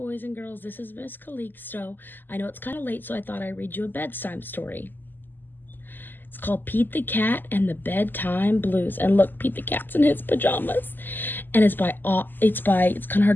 and girls. This is Miss Calixto. I know it's kind of late, so I thought I'd read you a bedtime story. It's called Pete the Cat and the Bedtime Blues. And look, Pete the Cat's in his pajamas. And it's kind of hard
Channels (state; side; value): late; right; 0.090 ms